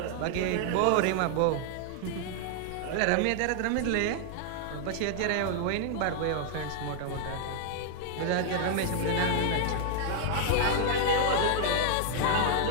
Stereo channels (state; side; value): different; both; correlation -0.01